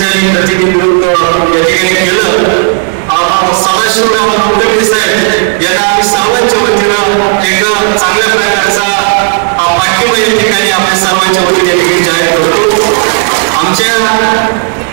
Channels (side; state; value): left; silent; 55 dB below the other